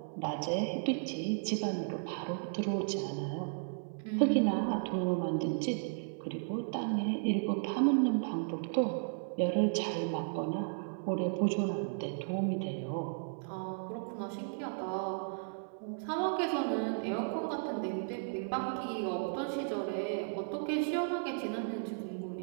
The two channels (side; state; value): left; silent; 55 dB below the other